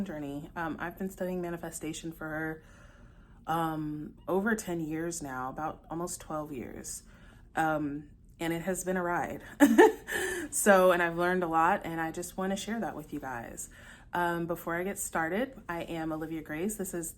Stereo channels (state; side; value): identical; both; correlation 1.00